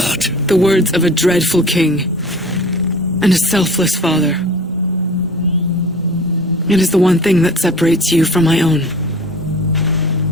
The words of a dreadful king and a selfless father. It is the one thing that separates you from my own.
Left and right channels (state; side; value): normal; both; correlation 0.43